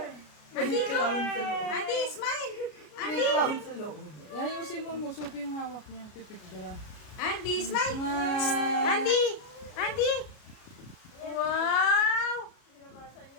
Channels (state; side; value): late; right; 33 ms